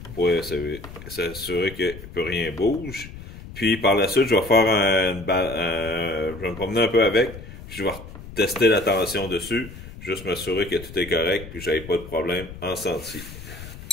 Pour s'assurer que plus rien bouge. Puis, par la suite, je vais faire je vais me promener un peu avec. Puis, je vais tester la tension dessus. Juste m'assurer que tout est correct. Puis, j'avais pas de problème en sentier.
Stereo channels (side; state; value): left; noise; rumble, 14 dB below the sound